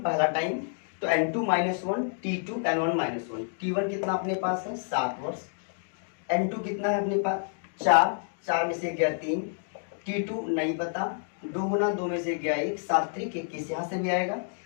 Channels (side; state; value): right; silent; digital silence